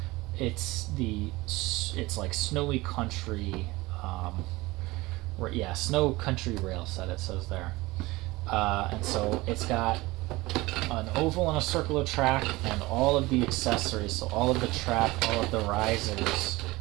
It's like Snowy Country, Snow Country rail set, it says there. And so it's got an oval and a circular track and all of the accessories, so all of the track, all of the risers,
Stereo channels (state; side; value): quieter; left; 20.8 dB